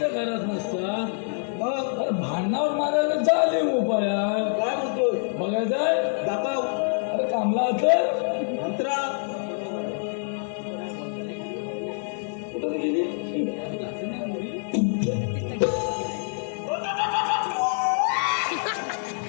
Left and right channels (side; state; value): right; silent; 61 dB below the other